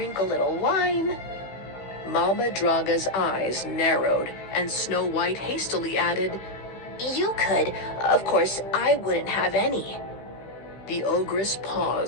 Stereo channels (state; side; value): late; right; 16 ms